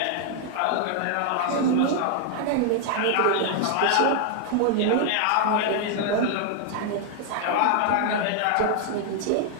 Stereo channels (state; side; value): different; both; correlation 0.00